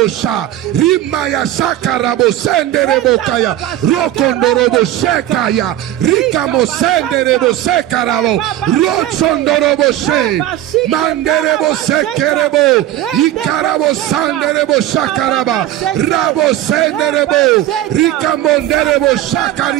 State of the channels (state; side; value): quieter; left; 13.2 dB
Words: sha. Rima ya sakarabo senderebo kaya. Rokondorobo shekaya. Rikamo senderebo sekarabo. Rotsondorobo she. Manderebo sekerebo. Ikarabo sanderebo shakaraba. Rabo senderebo. Rikamonderebo